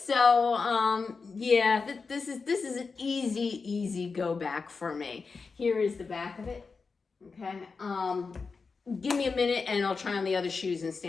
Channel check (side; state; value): right; quieter; 4.7 dB